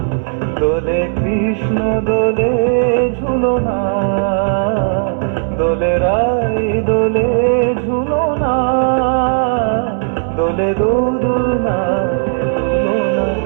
দোলে কৃষ্ণ দোলে ঝুলনা, দোলে রাই দোলে ঝুলনা, দোলে দোদুল না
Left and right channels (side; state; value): left; silent; digital silence